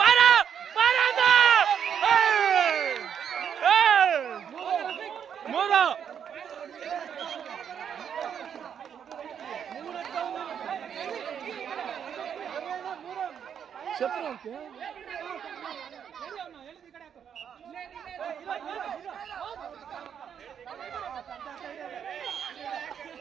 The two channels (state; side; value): quieter; left; 8.2 dB